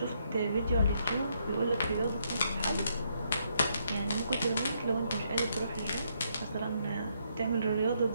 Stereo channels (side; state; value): both; inverted; correlation -0.75